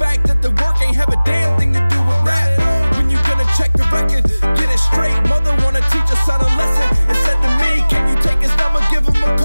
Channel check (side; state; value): both; inverted; correlation -0.99